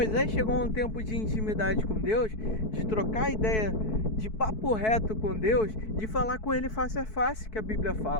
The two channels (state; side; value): late; right; 4.6 ms